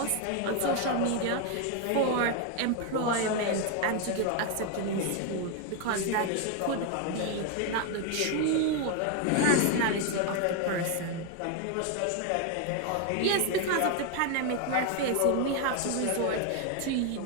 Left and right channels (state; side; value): different; both; correlation 0.01